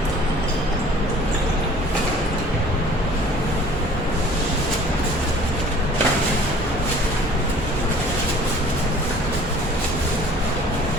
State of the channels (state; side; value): normal; both; correlation 0.50